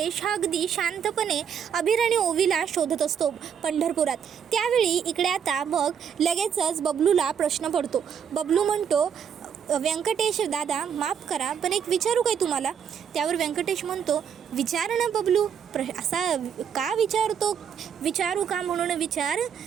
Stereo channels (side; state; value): left; quieter; 7.9 dB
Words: हा अगदी शांतपणे अभिर आणि ओवीला शोधत असतो पंढरपुरात। त्यावेळी इकडे आता मग लगेचच बबलूला प्रश्न पडतो। बबलू म्हणतो, व्यंकटेश दादा माफ करा पण एक विचारू काय तुम्हाला? त्यावर व्यंकटेश म्हणतो, विचार ना बबलू, असा का विचारतो? विचारू का म्हणून विचार।